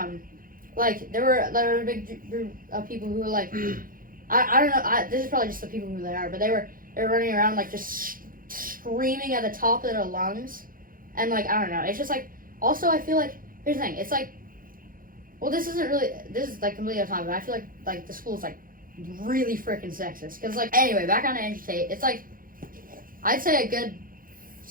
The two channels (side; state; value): left; late; 0.41 ms